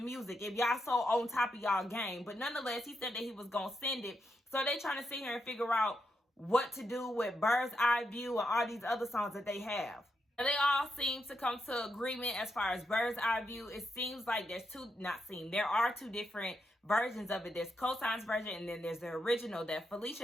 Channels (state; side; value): normal; both; correlation 0.83